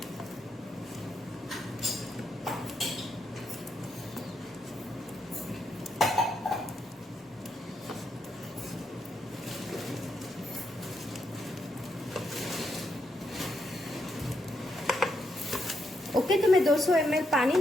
ओके, तो मैं 200 ml पानी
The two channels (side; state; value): both; normal; correlation 0.79